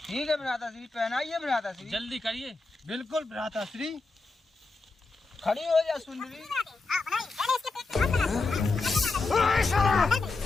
ठीक है भ्राता श्री, पहनाइए भ्राता श्री। जल्दी करिए। बिल्कुल भ्राता श्री। खड़ी हो जा सुंदरी।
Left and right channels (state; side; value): quieter; right; 3.6 dB